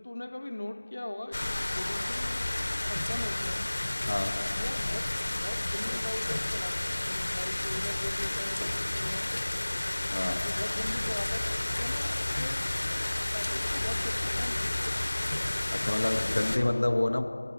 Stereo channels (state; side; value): inverted; both; correlation -1.00